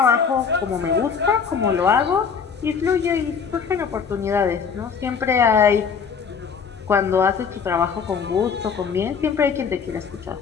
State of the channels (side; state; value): right; quieter; 6.3 dB